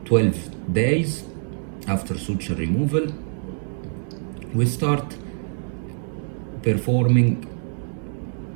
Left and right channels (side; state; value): left; silent; 62 dB below the other